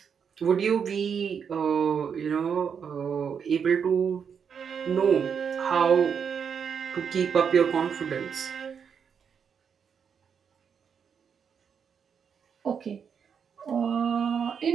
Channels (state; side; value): quieter; left; 7.0 dB